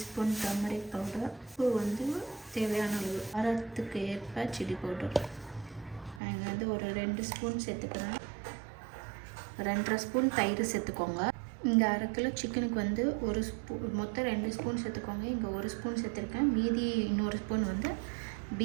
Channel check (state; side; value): drops out; left; at 6.2 s